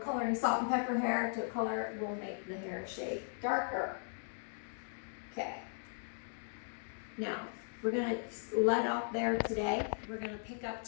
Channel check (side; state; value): right; silent; digital silence